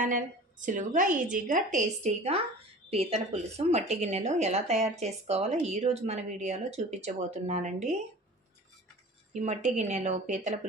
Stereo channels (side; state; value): both; normal; correlation 0.40